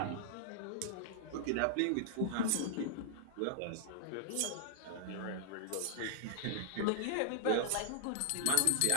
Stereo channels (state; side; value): different; both; correlation -0.01